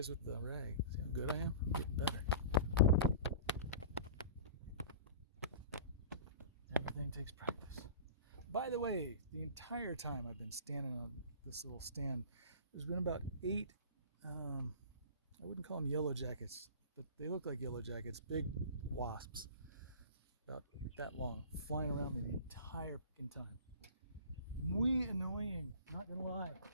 with the rag. See how good I am? I'm getting better. Everything takes practice. By the way, the entire time I've been standing on this little stand, there's been about 8, I wouldn't call them yellow jackets, but they look like yellow jackets, big wasps, about that long, flying around me the entire fucking time. Muy annoying, not gonna lie.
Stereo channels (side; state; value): both; inverted; correlation -0.39